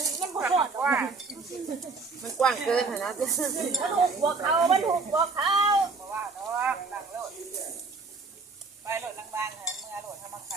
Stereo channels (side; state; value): left; quieter; 4.2 dB